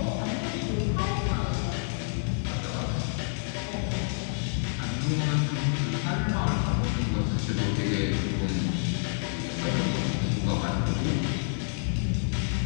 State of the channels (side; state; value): right; silent; digital silence